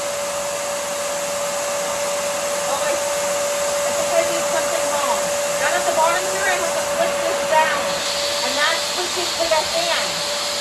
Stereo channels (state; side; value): identical; both; correlation 1.00